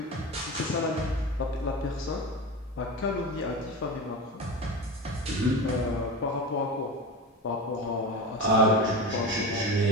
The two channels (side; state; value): both; normal; correlation 0.26